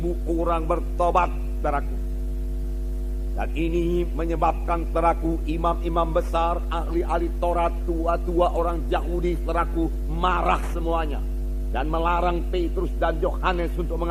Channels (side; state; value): both; identical; correlation 1.00